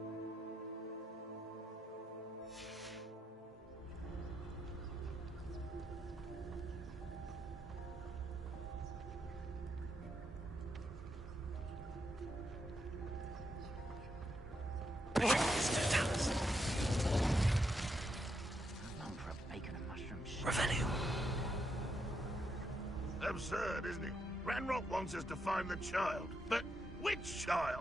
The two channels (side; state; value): both; normal; correlation 0.81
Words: Absurd, isn't it? Ranrock wants us to find the child. But which